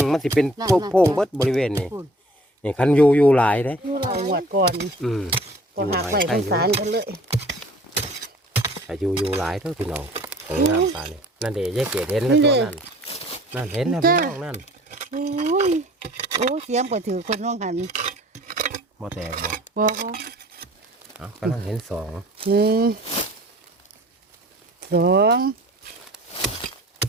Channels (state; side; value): normal; both; correlation 0.51